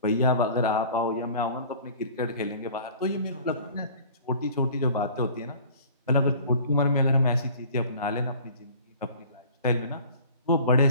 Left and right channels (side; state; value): both; inverted; correlation -0.46